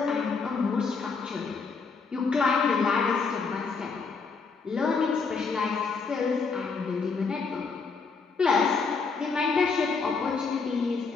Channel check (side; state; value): right; quieter; 4.8 dB